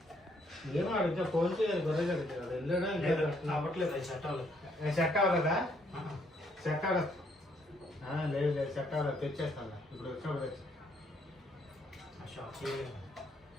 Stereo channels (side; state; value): both; normal; correlation 0.70